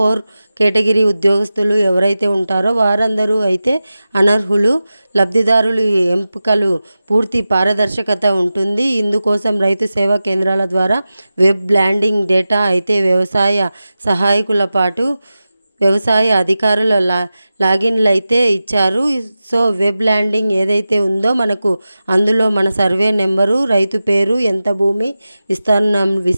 కేటగిరీ ఉద్యోగస్తులు ఎవరైతే ఉంటారో వారందరూ అయితే అనర్హులు. లబ్ధిదారులు ఎంపికలు పూర్తి పారదర్శకత ఉంటుంది. ఇందుకోసం రైతు సేవా కేంద్రాల ద్వారా వెబ్ ల్యాండింగ్ డేటా అయితే వ్యవసాయ సహాయకుల పాటు వ్యవసాయ అధికారుల లాగిన్లు అయితే ఇచ్చారు. వెబ్ ల్యాండింగ్ ఏదైతే ఉందో మనకు అందులో మన సర్వే నెంబరు, రైతు పేరు, ఎంత భూమి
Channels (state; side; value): inverted; both; correlation -0.94